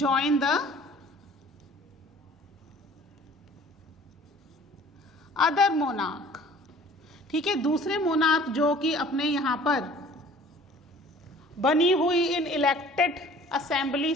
the other monarch. ठीक है, दूसरे मोनार्क जो कि अपने यहां पर बनी हुई इन इलेक्टेड असेंबली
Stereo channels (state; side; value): normal; both; correlation 0.50